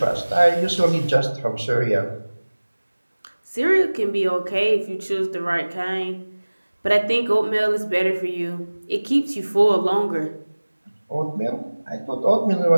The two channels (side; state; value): both; inverted; correlation -1.00